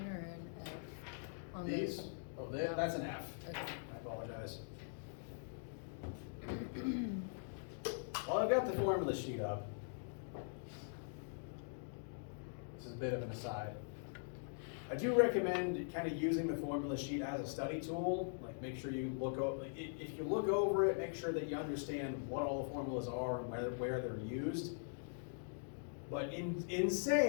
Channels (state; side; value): silent; right; digital silence